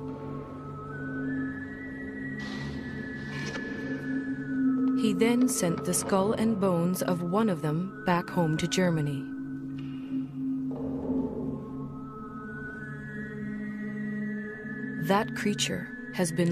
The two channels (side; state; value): both; identical; correlation 1.00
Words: He then sent the skull and bones of one of them back home to Germany. That creature has